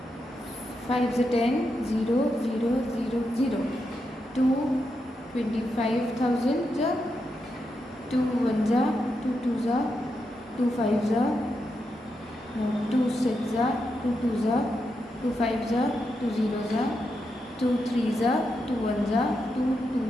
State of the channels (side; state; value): both; normal; correlation 0.85